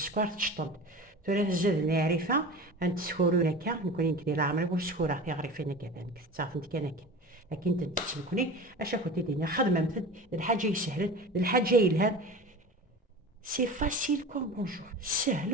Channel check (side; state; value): both; normal; correlation 0.34